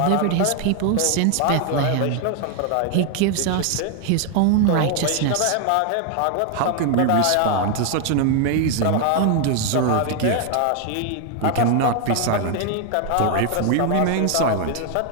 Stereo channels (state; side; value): different; both; correlation 0.00